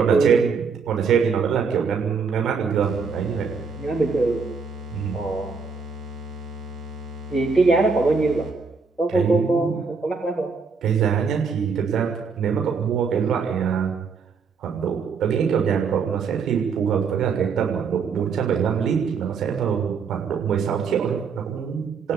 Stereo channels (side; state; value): left; quieter; 5.4 dB